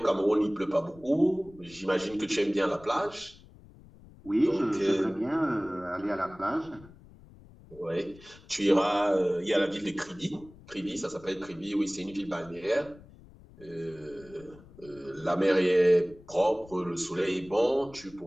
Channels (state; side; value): noise; left; rumble, 22 dB below the sound